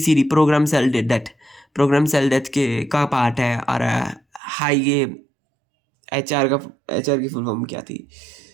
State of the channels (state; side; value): drops out; left; at 4.4 s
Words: programme cell death, programme cell death के का पार्ट है। और हाई ये HR की फुल फॉर्म क्या थी,